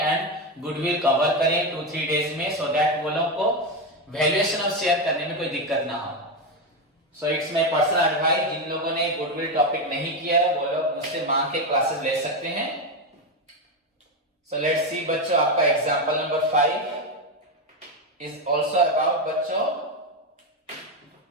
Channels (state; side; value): normal; both; correlation 0.11